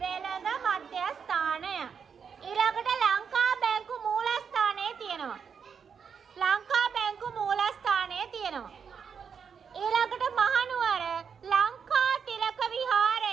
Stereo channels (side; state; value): left; quieter; 6.7 dB